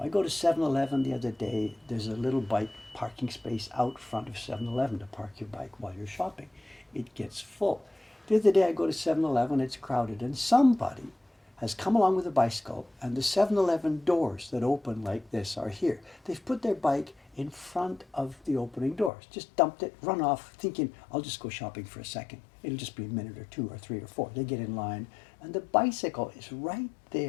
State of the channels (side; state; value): right; drops out; at 19.1 s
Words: go to 7-Eleven the other day. There's a little bike parking space out front of 7-Eleven to park your bike while you're shopping. It gets full. The other day I go to 7-Eleven, it's crowded, and somebody has come along with a bicycle, and the 7-Eleven doors that open like this are here. They've put their bike in front of the opening doors. Just dumped it, run off, thinking, I'll just go shopping for a second. It'll just be a minute or 2 or 3 or 4. They get in line, and the bicycle is right